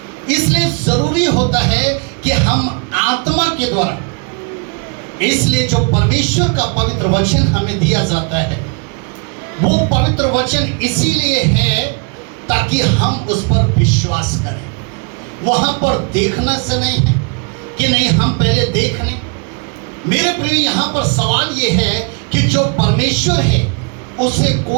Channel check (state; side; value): quieter; left; 34.6 dB